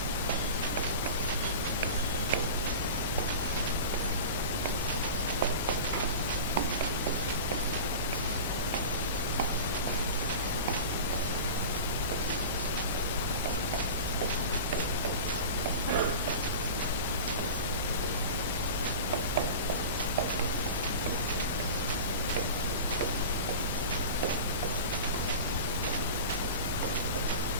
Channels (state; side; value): inverted; both; correlation -0.33